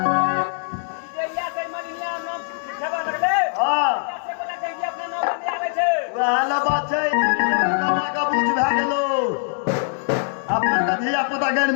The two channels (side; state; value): right; silent; 64 dB below the other